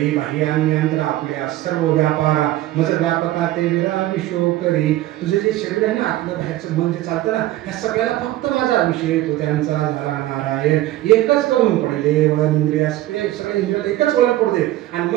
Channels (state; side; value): quieter; left; 15.3 dB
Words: बाह्यांतर आपल्या सर्व व्यापारा मज व्यापका ते विरामी शोकरी. तुझे जे शरीर आहे ना, आपलं बाहेरचं मन जे चालतं ना, ह्या सगळ्याला फक्त माझा विषय तो त्यांचा झाला नारायण. एकच करून पडले वन इंद्रिया सगळ्या इंद्रियाला एकच वळण पडू दे आणि